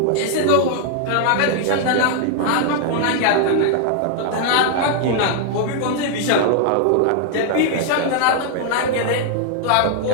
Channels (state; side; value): different; both; correlation 0.00